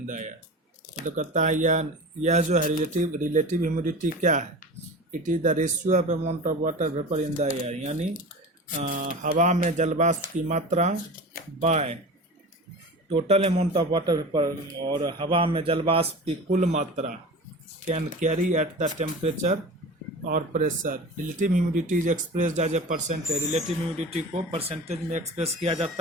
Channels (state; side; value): normal; both; correlation 0.34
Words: the air. तो कहता है यह जो है relative humidity क्या है, it is the ratio of amount of water vapour in the air, यानी हवा में जलवाष्प की मात्रा by total amount of water vapour और हवा में जलवाष्प की कुल मात्रा can carry at the temperature और pressure. Relative humidity is expressed as a percentage. Relative humidity को परसेंटेज में एक्सप्रेस किया